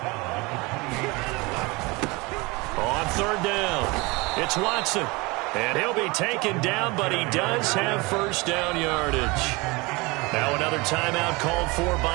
On 3rd down, it's Watson. And he'll be taken down, but he does have first down yardage. Now another timeout called for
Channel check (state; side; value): quieter; left; 25.0 dB